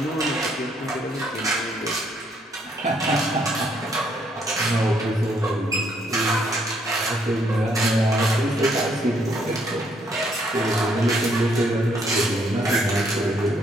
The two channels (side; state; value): both; normal; correlation 0.70